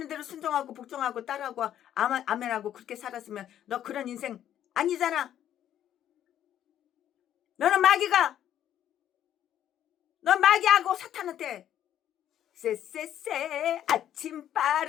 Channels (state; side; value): quieter; right; 10.9 dB